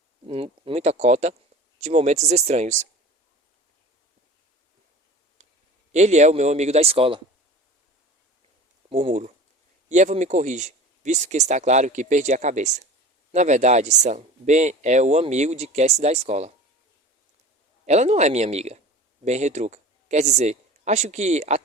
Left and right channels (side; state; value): both; normal; correlation 0.38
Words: de momentos estranhos. Ele é o meu amigo da escola. Murmuro. E Evan me corrige, visto que está claro que perdi a cabeça. Na verdade, Sam, Ben é o amigo de Cassie da escola. Ela não é minha amiga. Ben retruca. Quer dizer, acho que